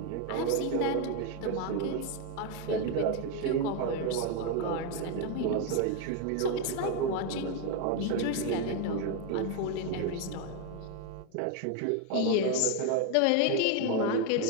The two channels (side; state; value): both; different; correlation 0.02